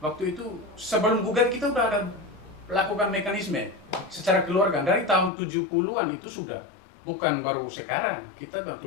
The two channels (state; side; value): drops out; right; at 5.3 s